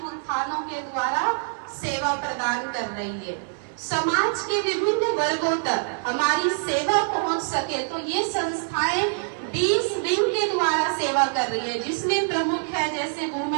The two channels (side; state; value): left; silent; 62 dB below the other